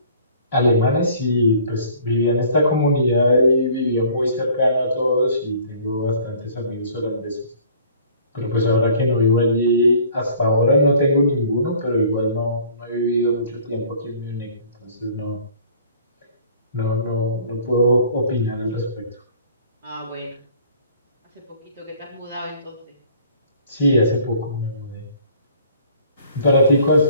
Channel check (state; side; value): inverted; both; correlation -0.53